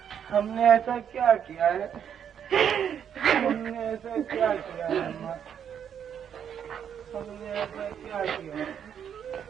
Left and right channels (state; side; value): quieter; left; 8.5 dB